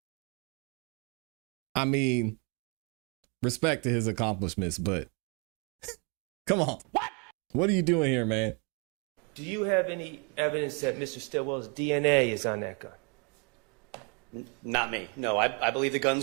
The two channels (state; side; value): quieter; left; 34.4 dB